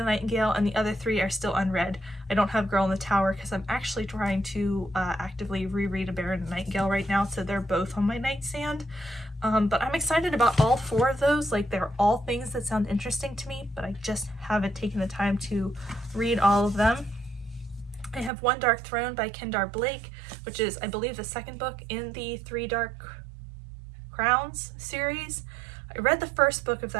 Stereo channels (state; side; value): drops out; left; at 18.3 s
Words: Nightingale, and the other 3 are still unread. I don't have Girl in the Tower because I'm actually trying to actively reread A Bear and the Nightingale right now, so they're both on my nightstand. But I'm excited about all 4 of those. Like, they're all things that sound interesting to me, but I just haven't taken the time to read all of them. I have One Dark Throne by Kendar Blake, which is, I believe, the second book in the 3 Dark Crowns series. I read the first book of